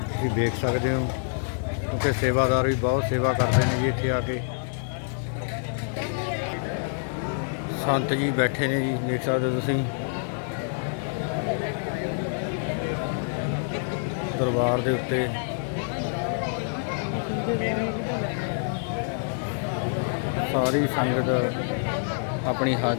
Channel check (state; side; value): silent; right; digital silence